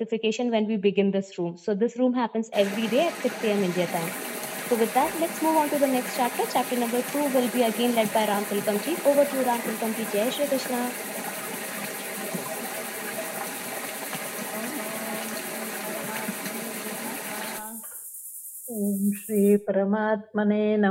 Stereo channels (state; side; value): identical; both; correlation 1.00